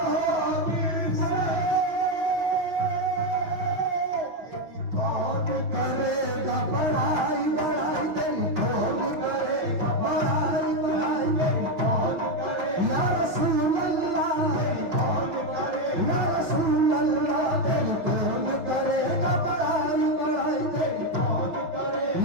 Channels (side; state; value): left; late; 6.1 ms